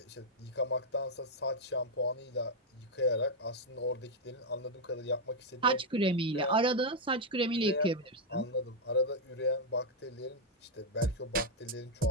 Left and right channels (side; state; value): both; normal; correlation 0.00